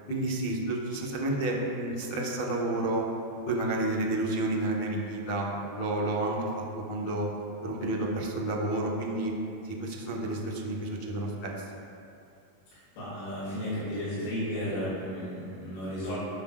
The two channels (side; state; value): right; late; 21 ms